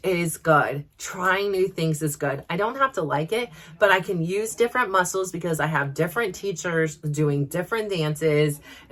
is good. Trying new things is good. I don't have to like it, but I can use different muscles because I have different teachers doing different dances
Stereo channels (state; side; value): identical; both; correlation 1.00